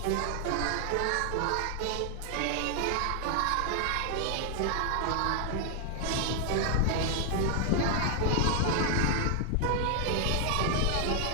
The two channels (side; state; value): both; different; correlation 0.00